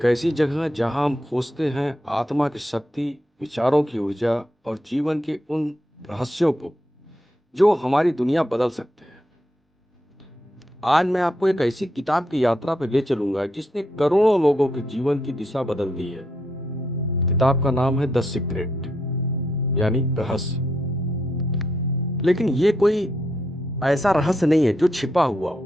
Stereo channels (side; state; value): both; normal; correlation 0.79